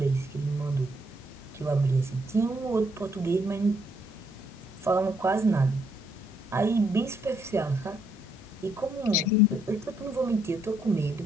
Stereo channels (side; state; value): both; normal; correlation 0.73